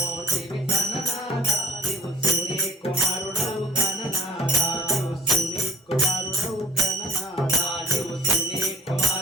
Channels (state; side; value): normal; both; correlation 0.53